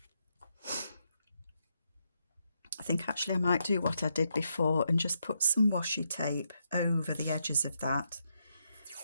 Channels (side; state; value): both; inverted; correlation -0.80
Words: I think actually I might do what I did before and just put some washi tape over the edges of that,